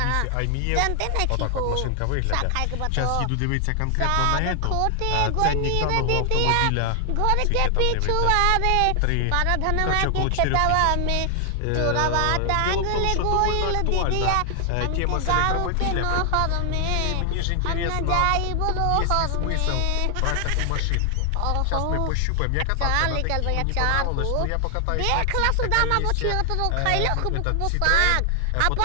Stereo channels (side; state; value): both; different; correlation 0.00